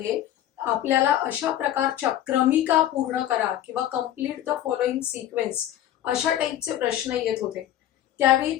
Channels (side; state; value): right; quieter; 12.1 dB